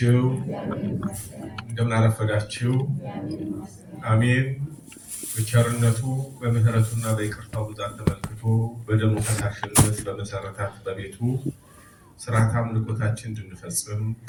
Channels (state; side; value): identical; both; correlation 1.00